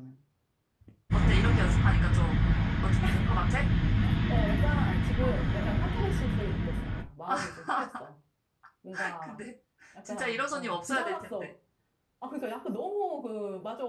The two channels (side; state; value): both; identical; correlation 1.00